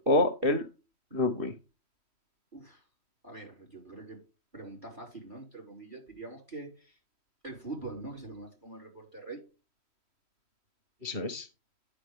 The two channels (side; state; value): left; late; 3.1 ms